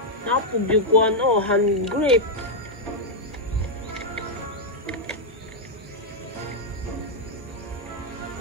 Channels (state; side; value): normal; both; correlation -0.03